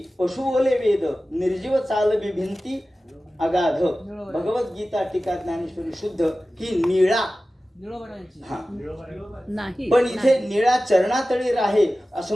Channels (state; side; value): normal; both; correlation 0.95